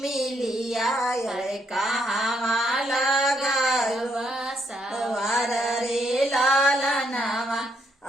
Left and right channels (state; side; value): normal; both; correlation 0.74